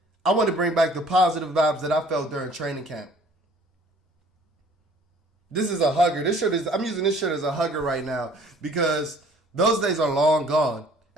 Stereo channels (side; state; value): both; normal; correlation 0.54